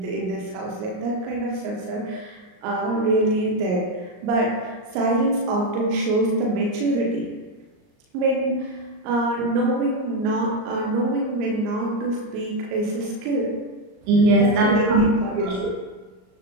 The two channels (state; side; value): late; left; 38 ms